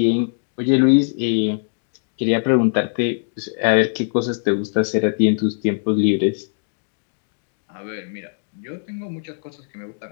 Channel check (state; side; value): silent; right; digital silence